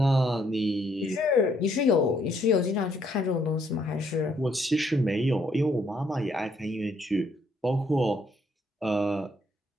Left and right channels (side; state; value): both; normal; correlation 0.69